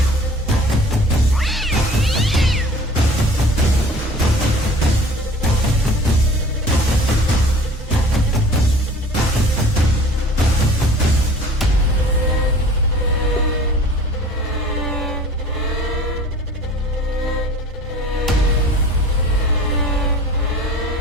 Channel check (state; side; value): normal; both; correlation 0.46